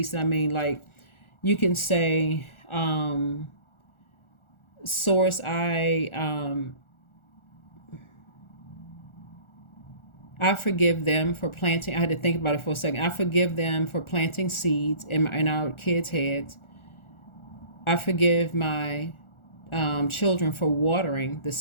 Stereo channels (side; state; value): right; late; 1.4 ms